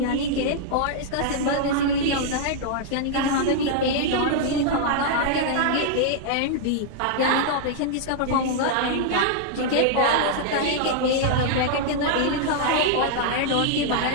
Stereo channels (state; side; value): different; both; correlation -0.01